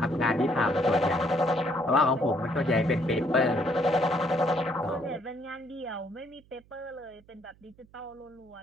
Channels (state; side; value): noise; right; hum, 29 dB below the sound